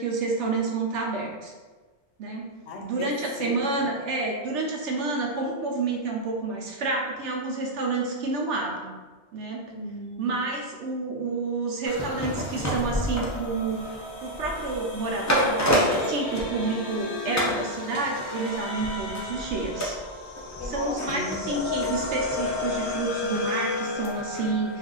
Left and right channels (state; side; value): normal; both; correlation -0.04